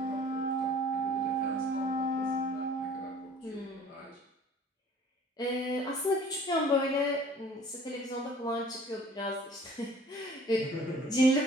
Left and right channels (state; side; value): normal; both; correlation 0.51